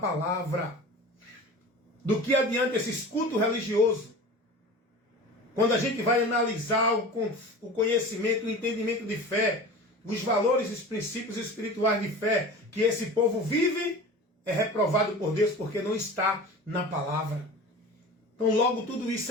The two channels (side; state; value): both; normal; correlation 0.36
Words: Do que adianta esses cultos religiosos? Quando a gente vai analisar o conhecimento, o entendimento de fé, os valores e os princípios espirituais de fé que esse povo vive, é reprovado por Deus porque não está na palavra. Então logo tudo isso